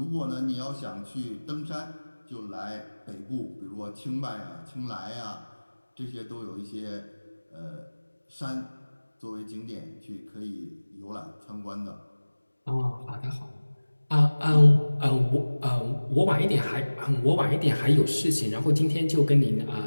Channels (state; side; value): inverted; both; correlation -1.00